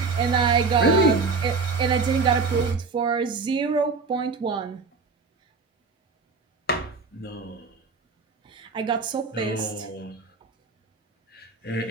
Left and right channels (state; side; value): quieter; left; 4.4 dB